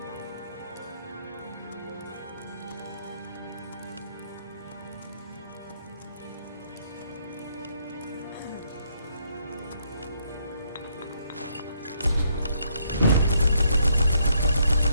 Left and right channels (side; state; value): both; inverted; correlation -0.72